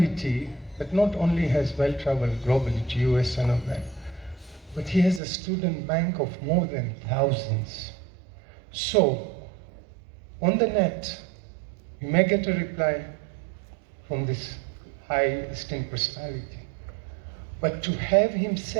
that not only has well-traveled globally to US and all that, but he has a student bank of more than thousands. So, on the net, you may get a reply from this high esteemed personality. But to have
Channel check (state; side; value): drops out; left; at 5.2 s